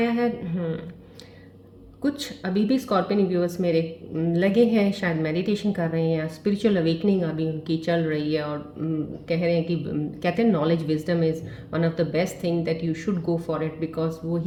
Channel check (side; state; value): both; identical; correlation 1.00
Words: है। कुछ अभी भी स्कॉर्पियन व्यूअर्स मेरे लगे हैं, शायद मेडिटेशन कर रहे हैं, स्पिरिचुअल अवेकनिंग अभी उनकी चल रही है और कह रहे हैं कि कहते हैं knowledge wisdom is one of the best thing that you should go for it, because वो